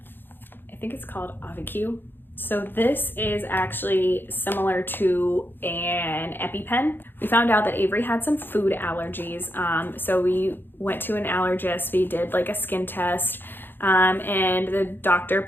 I think it's called AviQ. So this is actually similar to an EpiPen. We found out that Avery had some food allergies. So we went to an allergist, we did like a skin test, and the doctor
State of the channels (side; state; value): right; late; 0.098 ms